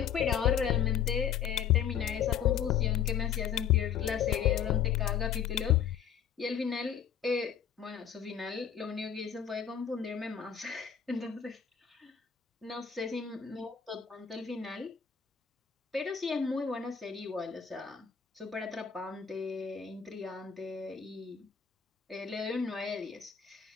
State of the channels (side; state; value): right; quieter; 8.1 dB